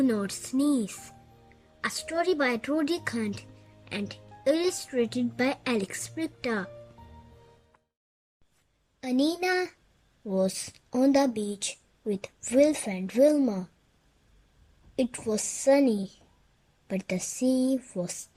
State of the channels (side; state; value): both; identical; correlation 1.00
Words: Not Sneeze, a story by Roderick and illustrated by Brychta. Anina was on the beach with Wilf and Wilma. It was sunny, but the sea was